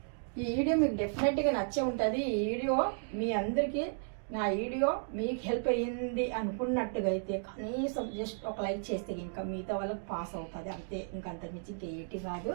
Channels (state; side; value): silent; left; digital silence